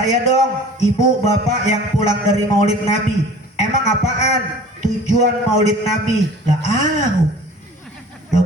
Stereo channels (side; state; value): both; normal; correlation 0.45